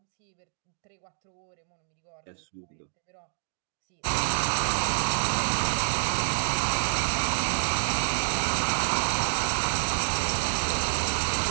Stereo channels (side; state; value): left; silent; digital silence